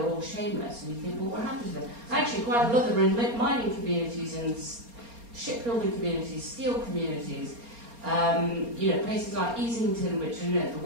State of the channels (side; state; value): left; late; 4.3 ms